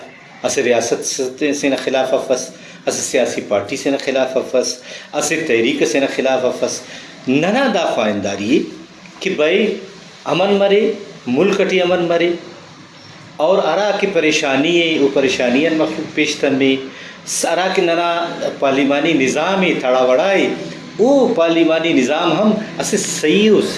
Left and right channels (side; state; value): both; identical; correlation 1.00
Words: اسے ریاست سے خلاف افس اسے سیاسی پارٹی سے خلاف افس اسے تحریک سے خلاف افس ننا دا خواہنداری کہ بھئی امن مرے ملک ٹی امن مرے اور ارا کی پریشانی ہے وہ پریشانیاں مخلوق پیشتن میں ارا کے ننا پارلیمانی نظام تھڑا وڑائے وہ پارلیمانی نظام ہم اسے صحیح و